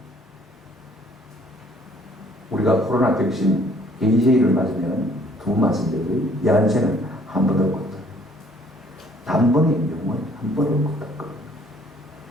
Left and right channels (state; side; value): normal; both; correlation 0.60